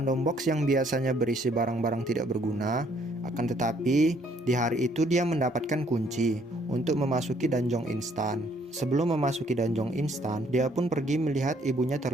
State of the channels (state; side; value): normal; both; correlation 0.65